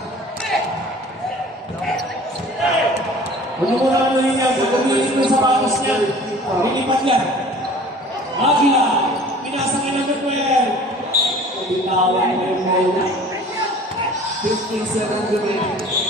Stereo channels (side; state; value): both; normal; correlation 0.46